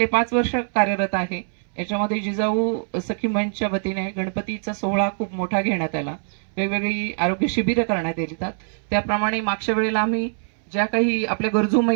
5 वर्ष कार्यरत आहे. याच्यामध्ये जिजाऊ सखी मंचच्या वतीने गणपतीचा सोहळा खूप मोठा घेण्यात आला, वेगवेगळी आरोग्य शिबिरं करण्यात येतात. त्याप्रमाणे मागच्या वेळेला आम्ही ज्या काही आपल्या गरजू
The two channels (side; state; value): left; silent; 63 dB below the other